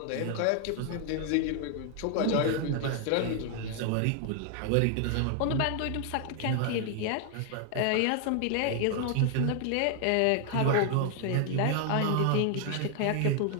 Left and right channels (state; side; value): different; both; correlation 0.00